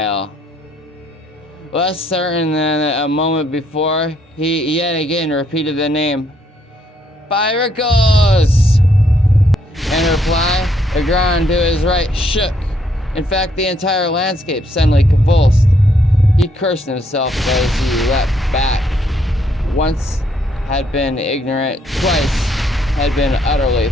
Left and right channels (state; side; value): normal; both; correlation 0.71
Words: Less certain than a moment before, he yet again repeated the name. Pyracos! In reply, the ground to his right shook. In fact, the entire landscape suddenly convulsed. He cursed himself as he leapt back. Once had been ignorant, twice had been utterly